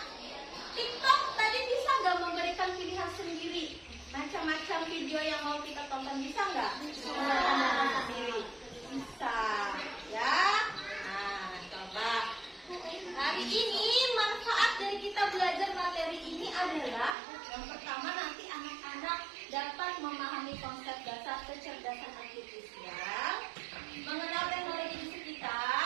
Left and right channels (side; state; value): left; drops out; at 17.2 s